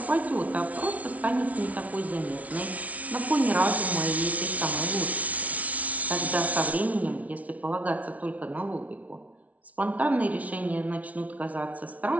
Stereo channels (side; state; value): left; late; 0.069 ms